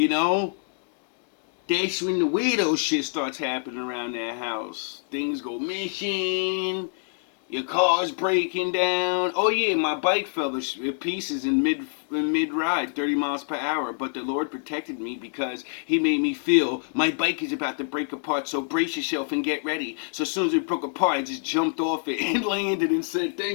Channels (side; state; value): right; silent; digital silence